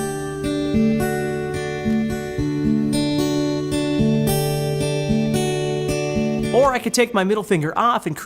Or I could take my middle finger off and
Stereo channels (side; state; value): both; identical; correlation 1.00